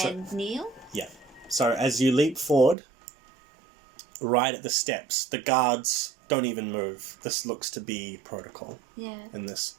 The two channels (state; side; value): drops out; left; at 2.8 s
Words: and kneel. Yeah. So as you leap forward, right at the steps, the guards don't even move. This looks to be protocol. Yeah. In this